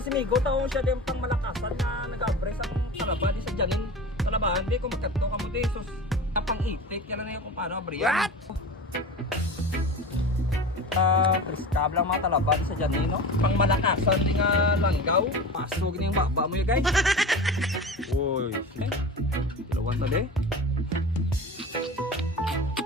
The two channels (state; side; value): normal; both; correlation 0.32